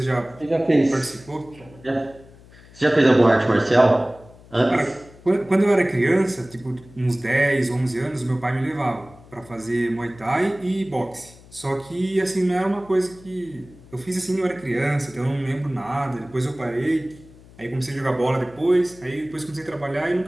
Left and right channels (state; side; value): noise; left; hum, 23 dB below the sound